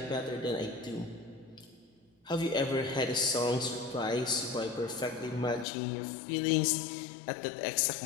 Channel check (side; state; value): right; drops out; at 5.7 s